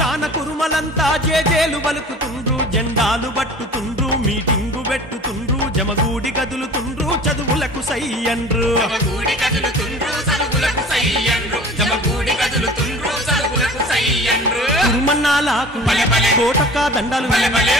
కురుమలంతా జేజేలు పలుకుతుండ్రు జెండాలు పట్టుతుండ్రు మీటింగు పెట్టుతుండ్రు జమగూడి కదులుతుండ్రు చదువులకు సై అండ్రు జమగూడి కదులుతుండ్రు చదువులకు సై అండ్రు జమగూడి కదులుతుండ్రు చదువులకు సై అండ్రు కురుమన్నాలకు కోటొక్క దండలు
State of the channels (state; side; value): normal; both; correlation 0.43